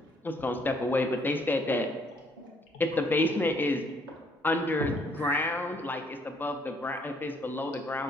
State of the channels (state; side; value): normal; both; correlation 0.66